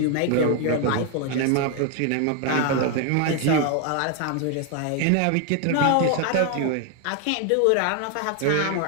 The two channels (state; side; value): different; both; correlation 0.00